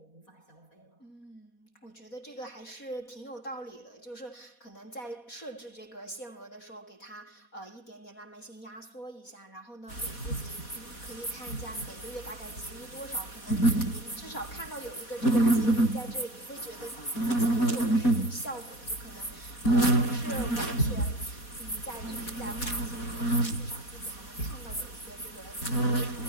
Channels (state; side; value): late; right; 4.2 ms